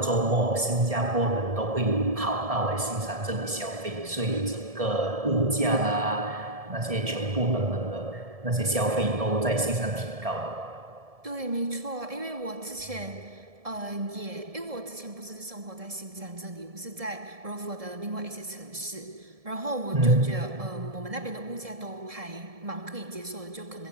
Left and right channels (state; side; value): late; left; 1.7 ms